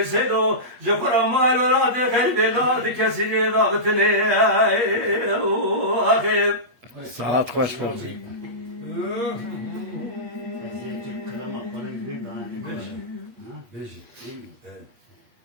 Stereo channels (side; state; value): left; late; 8.3 ms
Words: سيدو جفر ما الولاد خير بلاد كسر ضغطني أخي ساعت خوش بودی.